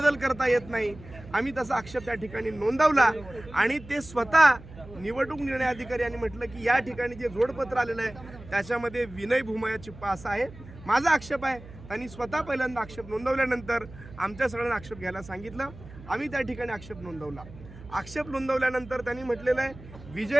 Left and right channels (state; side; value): noise; right; hum, 17 dB below the sound